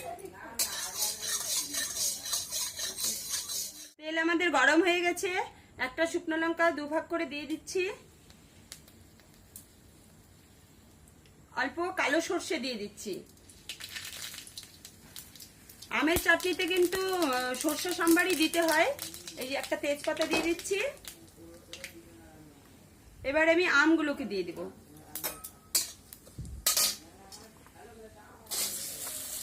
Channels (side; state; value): both; identical; correlation 1.00